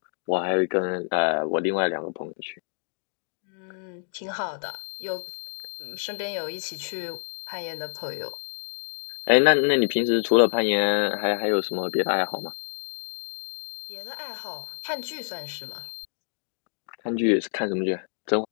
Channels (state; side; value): silent; right; digital silence